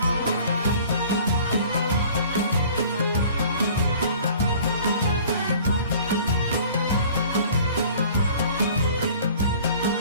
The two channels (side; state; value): both; inverted; correlation -0.48